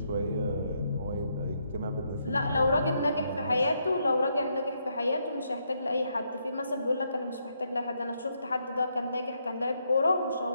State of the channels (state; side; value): inverted; both; correlation -0.77